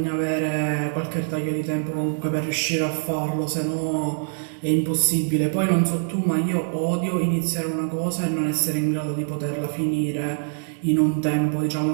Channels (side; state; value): left; silent; 63 dB below the other